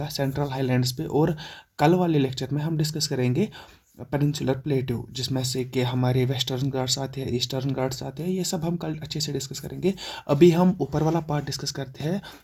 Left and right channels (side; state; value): both; identical; correlation 1.00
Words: सेंट्रल हाईलैंड्स पे, और कल वाले लेक्चर में हम डिस्कस करेंगे पेनिनसुलर प्लेट्यू, जिसमें से कि हमारे वेस्टर्न घाट्स आते हैं, ईस्टर्न घाट्स आते हैं। ये सब हम कल अच्छे से डिस्कस करेंगे। अभी हम ऊपर वाला पार्ट डिस्कस करते हैं